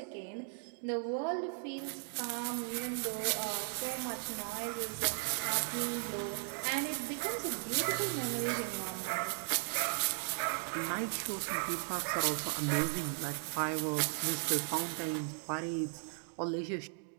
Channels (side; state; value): left; silent; 53 dB below the other